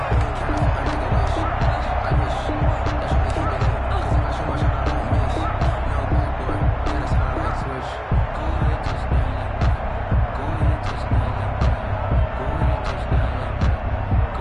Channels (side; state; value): both; identical; correlation 1.00